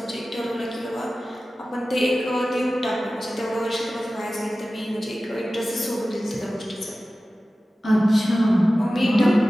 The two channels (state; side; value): normal; both; correlation 0.96